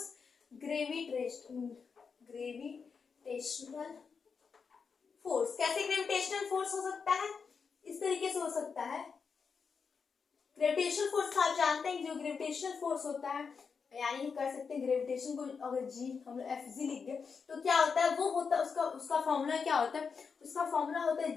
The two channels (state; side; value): quieter; right; 5.6 dB